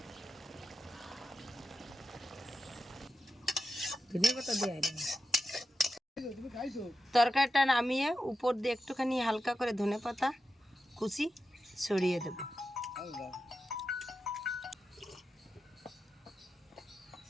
তরকারিটা নামিয়ে উপর দিয়ে একটুখানি হালকা করে ধনেপাতা কুচি ছড়িয়ে দেব।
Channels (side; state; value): both; normal; correlation 0.90